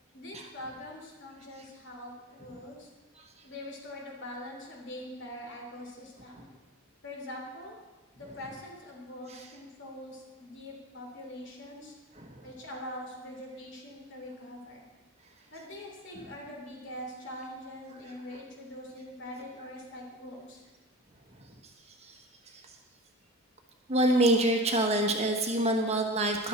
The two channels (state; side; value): normal; both; correlation 0.33